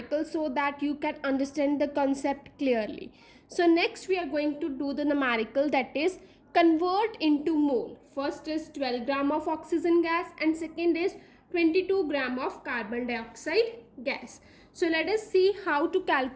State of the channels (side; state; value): both; identical; correlation 1.00